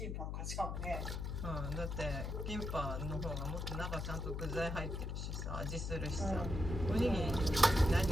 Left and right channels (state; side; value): noise; left; hum, 3 dB below the sound